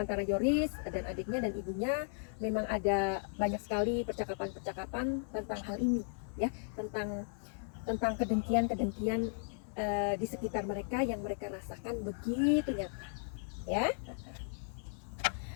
Yoris dan adiknya dan ibunya memang ada banyak sekali percakapan tentang hal ini, ya, tentang kedengkian di sekitar mereka yang mereka rasakan begitu nyata, ya.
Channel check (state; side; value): silent; right; 54 dB below the other